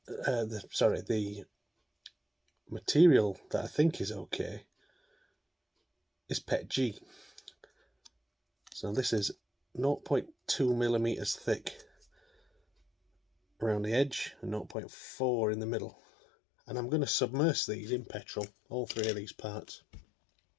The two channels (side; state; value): right; drops out; at 14.8 s